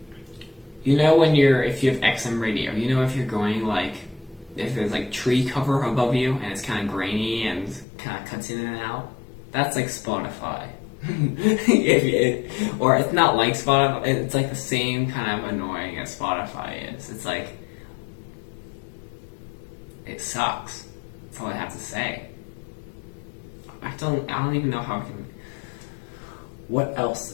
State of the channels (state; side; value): drops out; right; at 7.9 s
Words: If you have XM radio, if you're going like, if there's like tree cover above you and it's kind of grainy and kind of cuts in and out, that's like Spotify. Or it's not like Spotify, it's like the same kind of annoying as Spotify is. It's like, it sucks. That's all I have to say. I don't even know how I can... What else